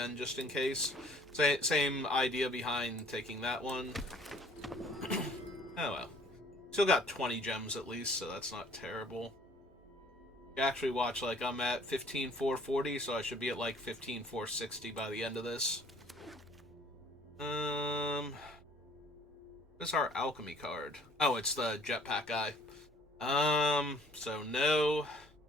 just in case. Same idea behind taking that one. Oh well. Still got 20 gems at least, so that's not terrible. You actually watch, like, I'm at 15,440, so I should be at, like, 15,460 by the end of this. What's our Alchemy card? Oh, it's the jetpack guy. So no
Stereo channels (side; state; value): both; normal; correlation 0.56